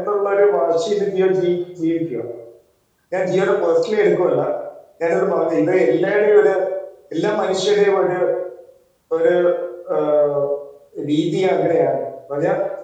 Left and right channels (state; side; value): identical; both; correlation 1.00